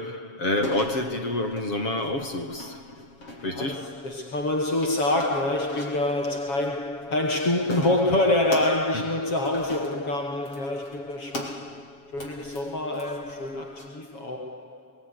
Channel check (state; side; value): late; right; 7.3 ms